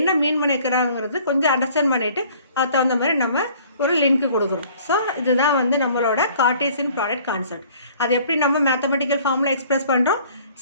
மீன் பண்ணிக்கிறாங்கிறது கொஞ்சம் அண்டர்ஸ்டாண்ட் பண்ணிவிட்டு அதுக்கு தகுந்த மாதிரி நம்ம ஒரு லிங்க் கொடுக்குறோம். ஸோ இதுதான் வந்து நம்மளோட கார்ட்டீசியன் ப்ராடக்ட் கான்செப்ட். அது எப்படி நம்ம மேத்தமெட்டிக்கல் ஃபார்மில் எக்ஸ்பிரஸ் பண்ணுறோம்.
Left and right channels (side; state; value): both; inverted; correlation -0.54